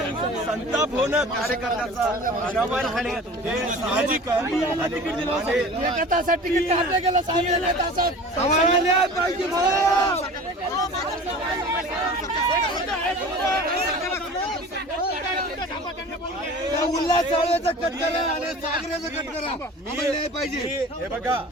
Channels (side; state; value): both; normal; correlation 0.40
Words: संताप होणं कार्यकर्त्याचा अनावर होणे हे साहजिक आहे। एका तासात तिकीट काढलं गेलं, साडेनऊ तासात पाहिजे। उल्हास चाळव्याचा कट करा आणि सागऱ्याचा कट करा, न्याय पाहिजे। हे